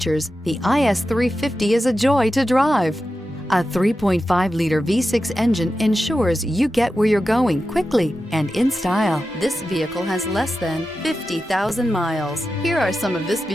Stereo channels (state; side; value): normal; both; correlation 0.91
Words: the IS350 is a joy to drive. A 3.5-liter V6 engine ensures you get where you're going quickly and in style. This vehicle has less than 50,000 miles. Here are some of this